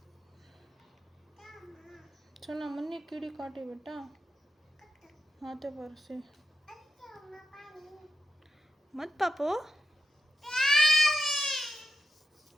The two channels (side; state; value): both; normal; correlation 0.85